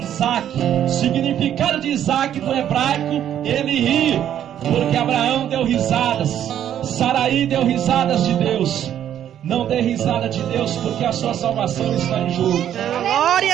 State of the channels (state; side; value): quieter; left; 10.4 dB